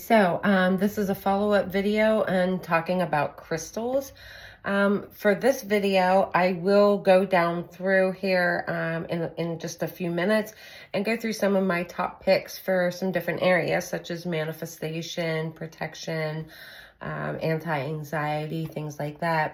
so this is a follow-up video and talking about crystals. For this video, I will go down through here in just a few minutes and go through some of my top picks for some different areas, such as manifestation, protection, anti-anxiety, things like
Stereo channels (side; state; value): both; identical; correlation 1.00